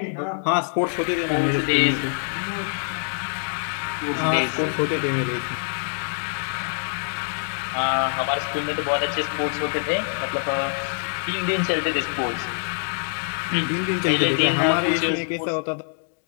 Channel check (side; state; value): right; silent; digital silence